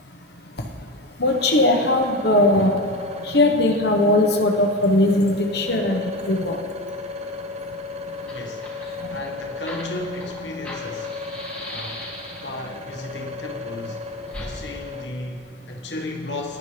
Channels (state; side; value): normal; both; correlation 0.23